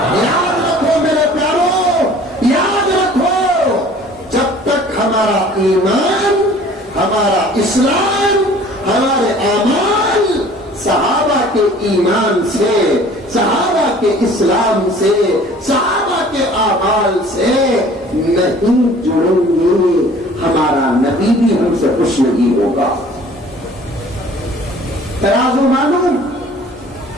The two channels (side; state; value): both; normal; correlation 0.50